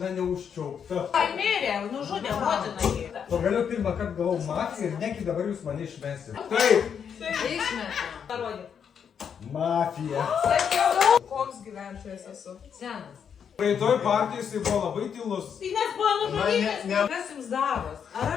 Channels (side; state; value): right; quieter; 7.5 dB